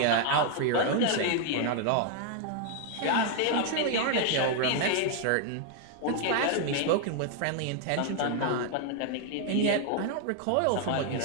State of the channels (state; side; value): different; both; correlation 0.00